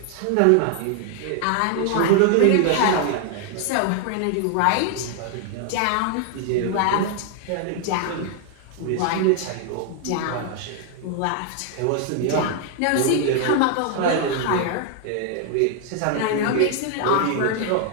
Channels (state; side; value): different; both; correlation 0.00